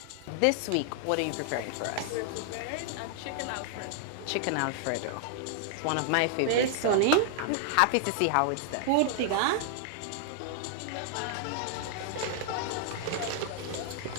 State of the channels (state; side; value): different; both; correlation 0.00